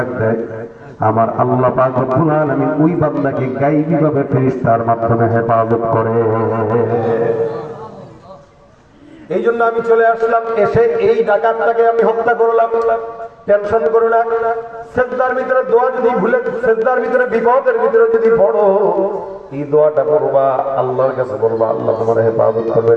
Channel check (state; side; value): identical; both; correlation 1.00